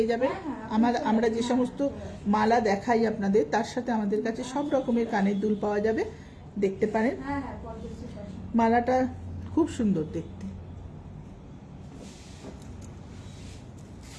যাবেন। আমরা যে সমস্ত মালা দেখাই আপনাদের, তার সাথে আমাদের কাছে সব রকমের কানের দুল পাওয়া যাবে, দেখতে পারেন। মালাটা খুব সুন্দর দেখতে।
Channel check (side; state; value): both; identical; correlation 1.00